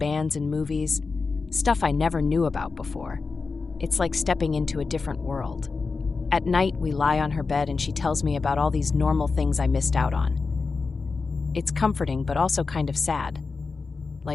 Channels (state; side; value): quieter; right; 4.4 dB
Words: and movies. stuff I never knew about before. It's like stepping into a different world. At night, we lie on her bed and she tells me about all these normal things I missed out on. It's comforting, but also kind of sad,